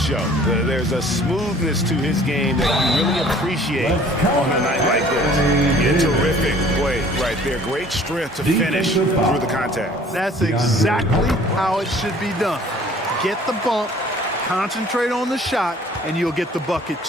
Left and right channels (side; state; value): both; normal; correlation 0.52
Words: show. There's a smoothness to his game that you really appreciate on a night like this. A terrific play right there. Great strength to finish through the contact. That's exactly how it should be done. Get the bump, concentrate on the shot, and you'll get the bucket